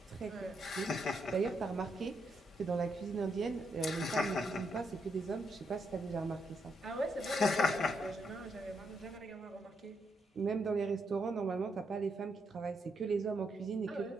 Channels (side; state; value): both; normal; correlation 0.79